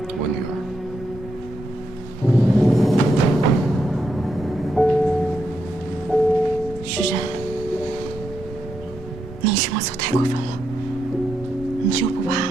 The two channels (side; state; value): both; normal; correlation 0.82